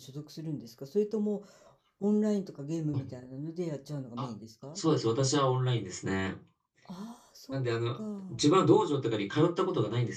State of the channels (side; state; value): both; identical; correlation 1.00